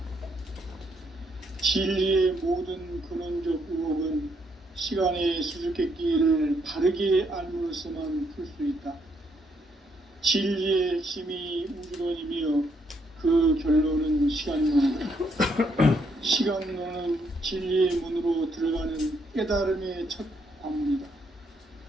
진리의 모든 근원적 의혹은 시간의 수수께끼를 바르게 알므로써만 풀 수 있다. 진리의 핵심이 우주론이며 그 결론은 시간론이다. 시간론은 진리의 문으로 들어가는 깨달음의 첫 관문이다.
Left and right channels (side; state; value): both; normal; correlation 0.73